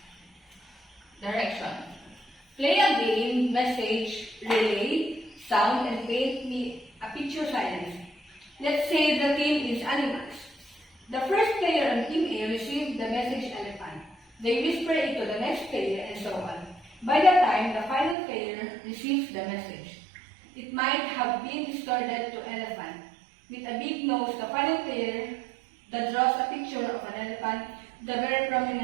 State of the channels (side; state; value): left; drops out; at 18.2 s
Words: direction. Play a game, message, relay, sound, and paint me a picture science. Let's say the theme is animals. The first player on Team A received the message elephant. They whisper it to the next player and so on. By the time the final player receives the message, it might have been distorted to elephant. With a big nose, the final player that draws a picture of an elephant, the very